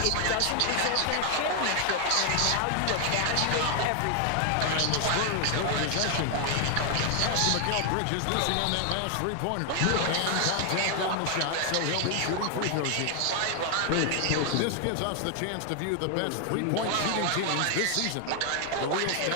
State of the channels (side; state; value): both; different; correlation 0.00